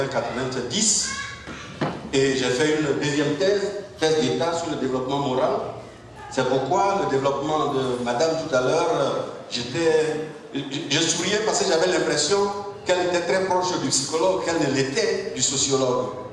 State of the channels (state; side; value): identical; both; correlation 1.00